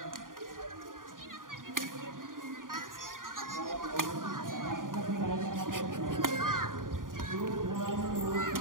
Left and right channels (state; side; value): late; left; 0.90 ms